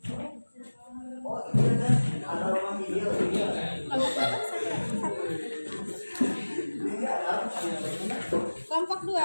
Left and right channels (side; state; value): both; inverted; correlation -1.00